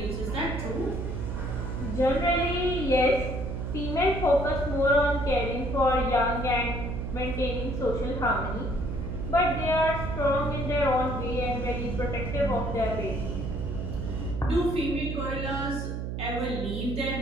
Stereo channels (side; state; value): right; noise; hum, 4 dB below the sound